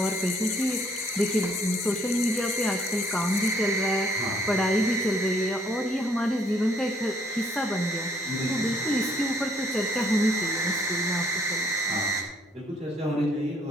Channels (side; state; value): both; normal; correlation 0.65